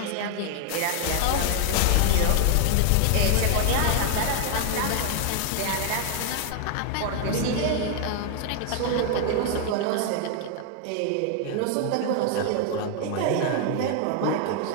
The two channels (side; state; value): both; different; correlation 0.00